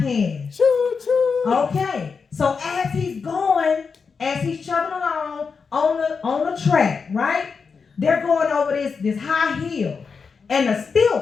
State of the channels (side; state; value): right; quieter; 5.4 dB